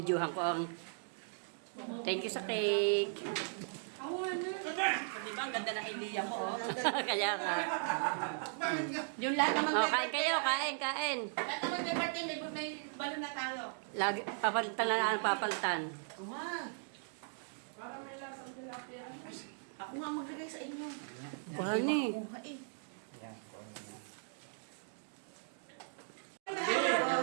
ko ang thank you sa cake. Di ba, ang ganda ng idea ko. Kaya ka. Yung lahat naman. Oh, kain kayo, kain. Lahat naman may birthday, may balon na tayo. Lagi, papalitan na papalitan. Para may lasang tilapia. Ako nga maglagay sa inyo. Kuhan eh.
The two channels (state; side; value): silent; left; digital silence